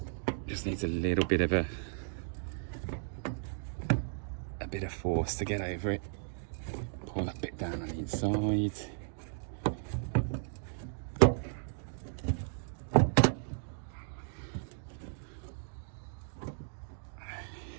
Just needs a little bit of a bit of force to get over it. Pull that bit down on the inside.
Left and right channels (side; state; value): left; silent; digital silence